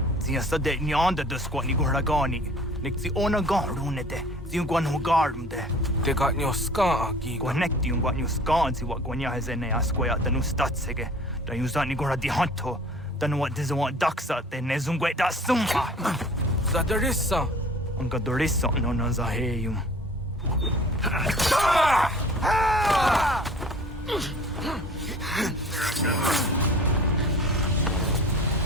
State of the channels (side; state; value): both; normal; correlation 0.46